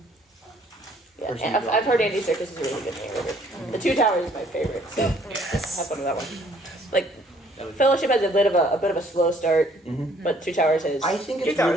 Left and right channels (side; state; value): both; normal; correlation 0.62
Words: Yeah, Person and I've, who I've heard Andy Serkis is a really good narrator. The Two Towers is my favorite, so have fun with that one. Like, Fellowship has a bit of a slow start, but Two Towers is. I think Two it's Towers